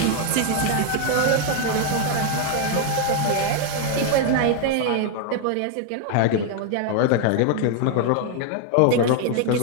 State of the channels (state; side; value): different; both; correlation 0.01